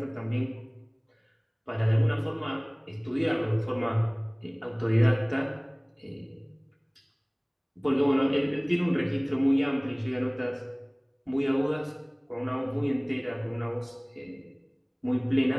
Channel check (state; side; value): identical; both; correlation 1.00